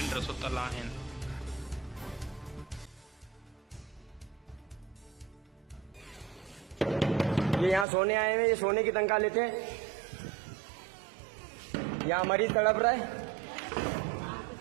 सुतल आहिनि। ये यहाँ सोने आए हैं, ये सोने की तनख्वाह लेते हैं। यहाँ मरीज तड़प रहा है।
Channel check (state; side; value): drops out; left; at 7.9 s